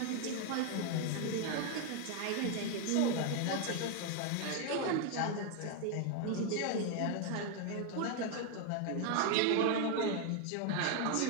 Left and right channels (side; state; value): both; different; correlation 0.01